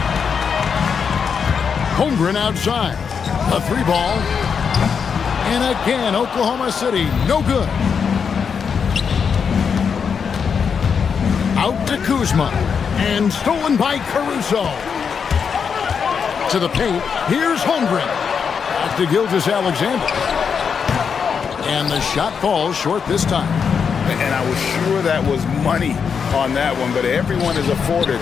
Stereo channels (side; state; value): right; quieter; 6.4 dB